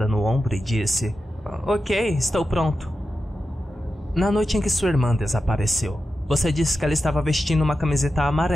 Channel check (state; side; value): normal; both; correlation 0.91